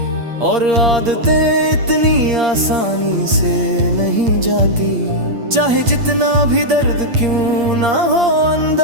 और आदतें इतनी आसानी से नहीं जाती, चाहे जितना भी दर्द क्यों ना हो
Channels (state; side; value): late; left; 8.6 ms